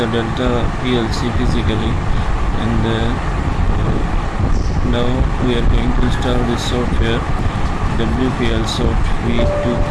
Delta PLC physically, and now we are going to install this software WPLSoft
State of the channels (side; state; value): both; identical; correlation 1.00